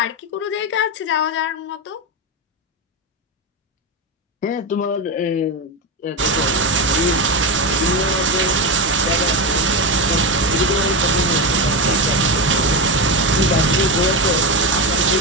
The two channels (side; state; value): both; normal; correlation 0.14